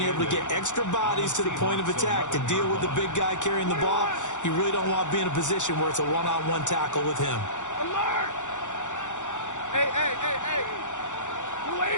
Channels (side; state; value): right; late; 0.85 ms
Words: able to get extra bodies to the point of attack to deal with the big guy carrying the ball. You really don't want to be in a position where it's a one-on-one tackle with him. Alert! Hey, hey, hey, hey!